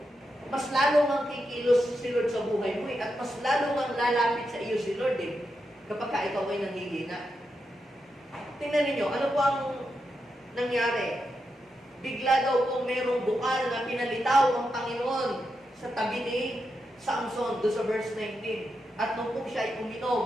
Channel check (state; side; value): normal; both; correlation 0.86